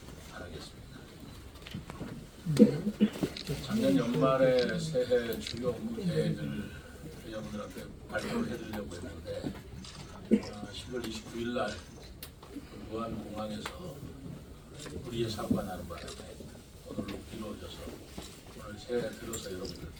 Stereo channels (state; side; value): identical; both; correlation 1.00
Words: 바라겠습니다. 작년 연말에 새해 주요 업무 계획을 여러분들한테 발표를 해드리려고 했는데 10월 29일 날 무안공항에서 우리의 사고가 나는 바람에 오늘로 미뤄져서 오늘 새해 들어서